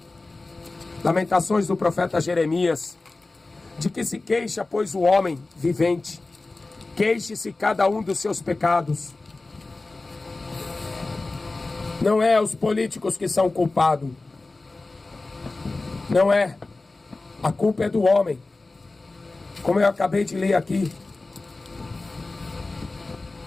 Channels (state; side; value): quieter; right; 3.3 dB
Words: Lamentações do profeta Jeremias. De que se queixa, pois, o homem vivente? Queixe-se cada um dos seus pecados. Não é os políticos que são culpados. Não é. A culpa é do homem. Como eu acabei de ler aqui.